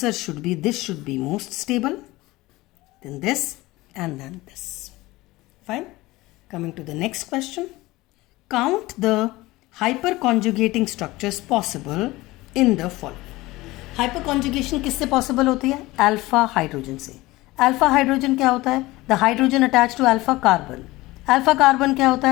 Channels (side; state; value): right; quieter; 19.6 dB